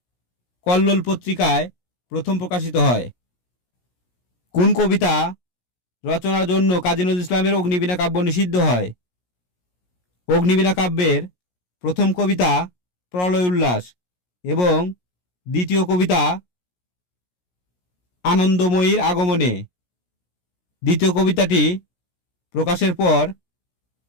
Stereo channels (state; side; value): late; right; 17 ms